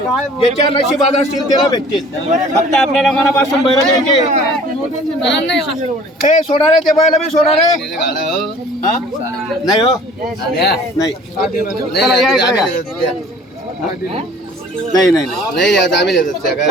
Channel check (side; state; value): both; normal; correlation 0.50